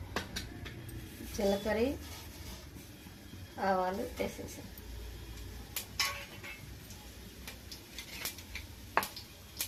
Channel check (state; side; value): identical; both; correlation 1.00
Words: జీలకర్ర, ఆవాలు వేసేసాను.